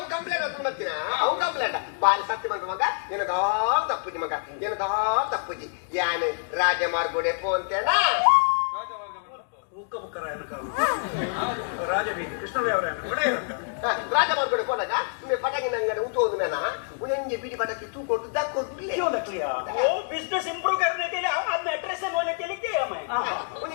ಕಂಪ್ಲೇಂಟ್ ಅಂತ ಬರ್ತೀನ ಅವು ಕಂಪ್ಲೇಂಟ್ ಬಾರಿ ಸತ್ಯ ಬಂದ ಮಗ ಏನದಾಲ್ ತಪ್ಪುಜಿ ಮಗ ಏನದಾಲ್ ತಪ್ಪುಜಿ ಯಾನು ರಾಜಮಾರ್ಗೋಡೆ ಪೋಂತೇನ ರಾಜಬೀದಿ ಕೃಷ್ಣದೇವರ ರಾಜಮಾರ್ಗೋಡೆ ಪೋನಾಗ ಪಟಾಕಿ ಅಂಗಡಿ ಉಂಟು ಮೇನ उन्हें बीड़ी पटाखे तू को दक को ले क्यों दक लिया वो बिजनेस इंप्रूव करने के लिए अब मैट्रेस से बोलने के लिए क्या मैं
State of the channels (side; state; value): right; silent; digital silence